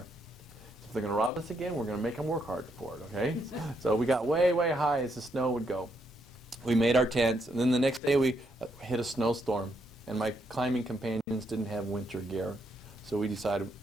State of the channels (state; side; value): normal; both; correlation 0.77